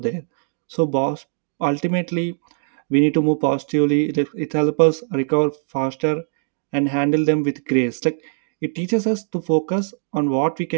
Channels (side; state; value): left; silent; digital silence